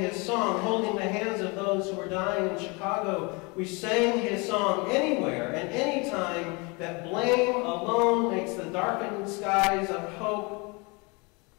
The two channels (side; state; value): right; quieter; 28.8 dB